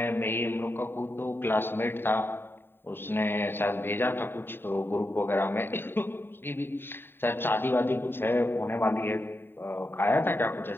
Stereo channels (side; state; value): right; late; 0.11 ms